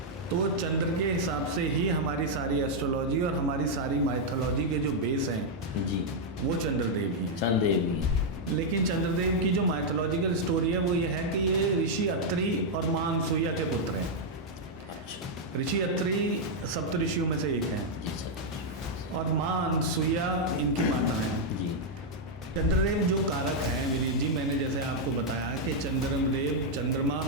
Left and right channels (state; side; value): normal; both; correlation -0.02